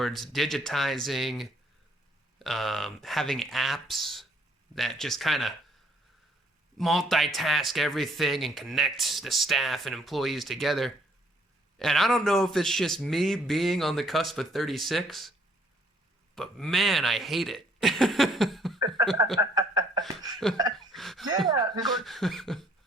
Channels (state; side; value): normal; both; correlation 0.64